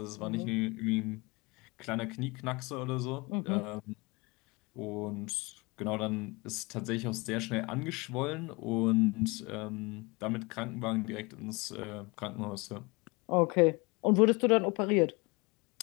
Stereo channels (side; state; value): right; quieter; 26.3 dB